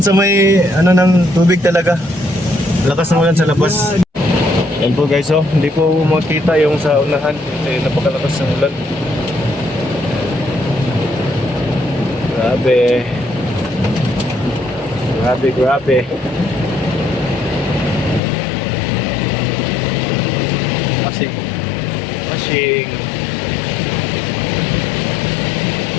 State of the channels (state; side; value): drops out; right; at 18.2 s